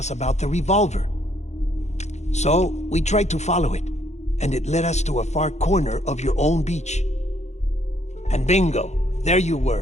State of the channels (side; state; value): right; late; 0.33 ms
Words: about the revolver. So, we tried to follow it, and it led us to a far corner of your own beach. And bingo, there you